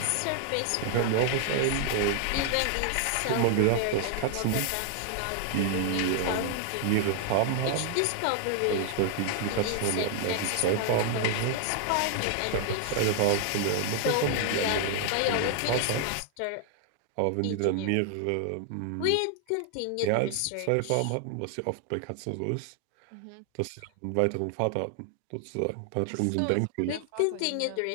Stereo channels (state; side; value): different; both; correlation 0.00